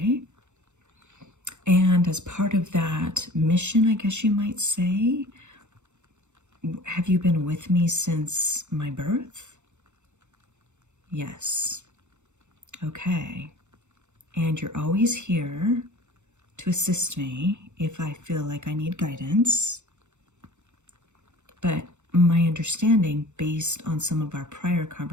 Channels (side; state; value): left; late; 0.83 ms